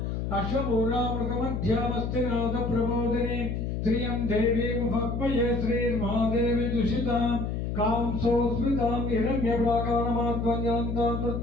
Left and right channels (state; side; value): noise; left; hum, 2 dB below the sound